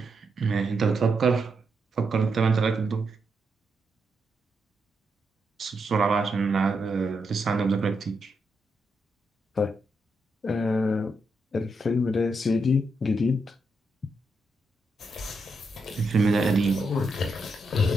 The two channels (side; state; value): both; normal; correlation 0.82